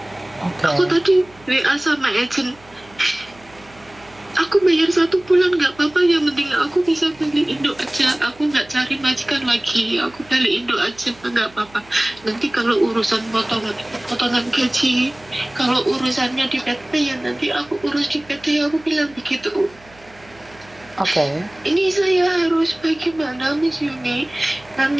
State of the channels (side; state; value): right; noise; hum, 26 dB below the sound